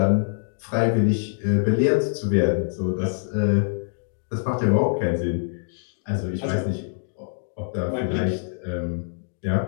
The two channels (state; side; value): silent; right; digital silence